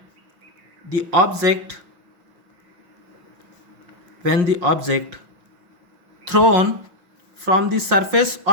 the object thrown from the surface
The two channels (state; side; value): late; left; 5.6 ms